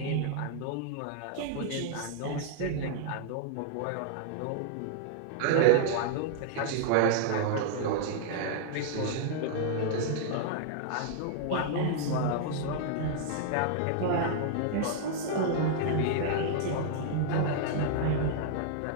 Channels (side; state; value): both; different; correlation -0.01